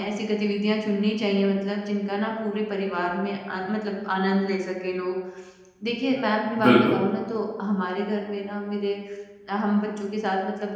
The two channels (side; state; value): both; identical; correlation 1.00